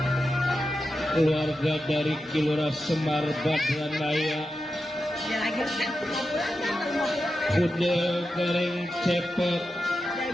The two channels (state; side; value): normal; both; correlation 0.90